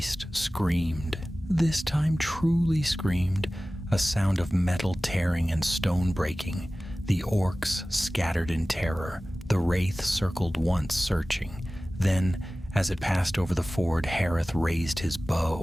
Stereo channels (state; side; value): normal; both; correlation 0.97